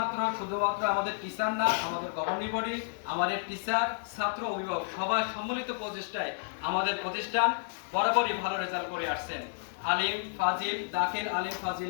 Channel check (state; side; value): silent; right; digital silence